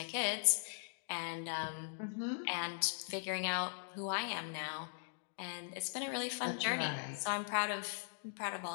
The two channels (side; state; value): right; silent; digital silence